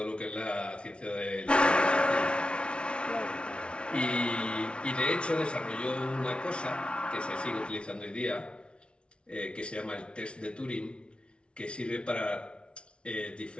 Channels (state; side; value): late; right; 0.058 ms